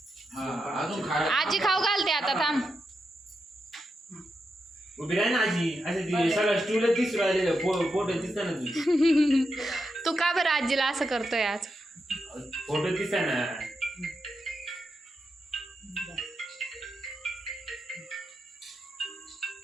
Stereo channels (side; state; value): both; normal; correlation 0.86